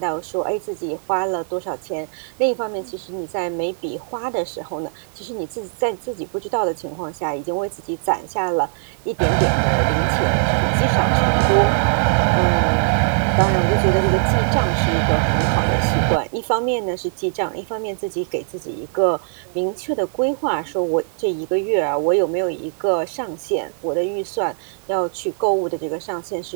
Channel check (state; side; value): silent; left; digital silence